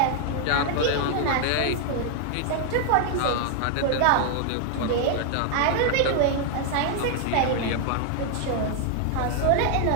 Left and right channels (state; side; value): different; both; correlation 0.00